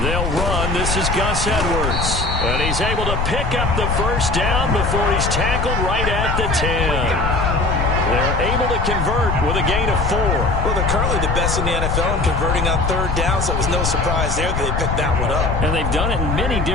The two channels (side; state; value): left; noise; rumble, 1 dB below the sound